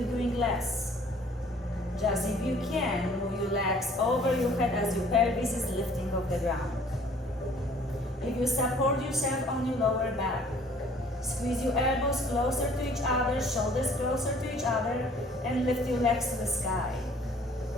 doing less. Just if you can, move your legs over your head as your pelvis is lifting off the ground. If you support yourself on your lower back, squeeze your elbows closer to each other, shoulders closer to each other, and lift your legs to the sky.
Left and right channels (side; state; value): both; normal; correlation 0.55